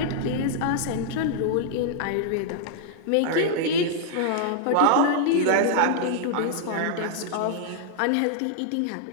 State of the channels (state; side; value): different; both; correlation -0.01